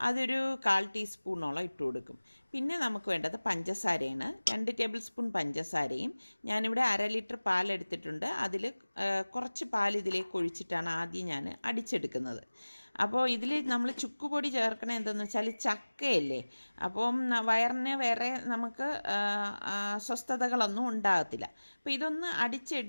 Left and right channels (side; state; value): both; inverted; correlation -1.00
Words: അതൊരു 1/4 ടീസ്പൂണോളം ഇട്ട് കൊടുക്കും. പിന്നെ നമുക്ക് വേണ്ടത് പഞ്ചസാരയാണ്. 2 ടേബിൾ സ്പൂൺ പഞ്ചസാരയും ഞാനിവിടെ 1/2 ലിറ്റർ പാലെടുത്തിട്ടുണ്ട്. അതിൽ കുറച്ച് പാൽ ഇതിലേക്ക് ഒഴിച്ചിട്ടാണ് ആദ്യം ഞാൻ അടിച്ചെടുക്കുന്നത്. അപ്പോൾ ഇതിൽ നമ്മൾ ചുക്കുപൊടി ചേർക്കണത് എന്തെന്ന് വെച്ചാൽ ചക്കയല്ലേ, അപ്പം വയറിന് വേറെ നമുക്ക് അസ്വസ്ഥതകളൊന്നും ഉണ്ടാകത്തില്ല. അപ്പോൾ ഇതൊന്ന്